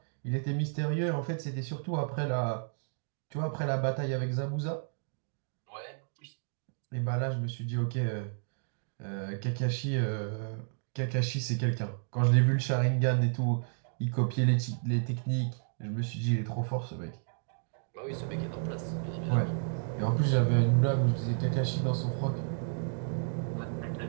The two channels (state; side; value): silent; left; digital silence